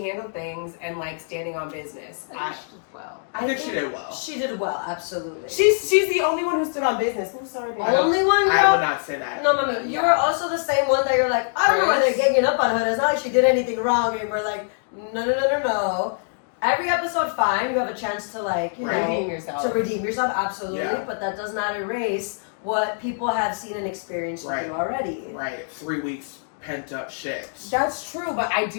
handled things and like standing on business. I think she did well. I think she did well. She did well, absolutely. She's the only one who stood on business. I'm sorry, baby. Only one girl. I would not say that. No, Mami, you were also the same one that you're like, I don't know why they're ganging up on her. It's not like she did anything wrong. And we're like, no. Every episode, fine. You have a chance to like, you know, Redeem yourself. to redeem yourself, absolutely. Yeah. But that does not erase what people have seen and experienced with Right. you already. Right, 3 weeks pent up shit. That's true, but I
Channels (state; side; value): silent; right; digital silence